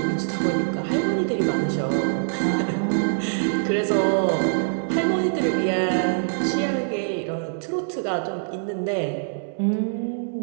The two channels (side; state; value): left; silent; 63 dB below the other